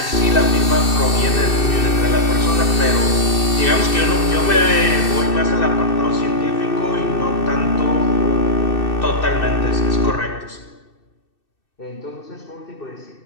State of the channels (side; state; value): right; late; 2.6 ms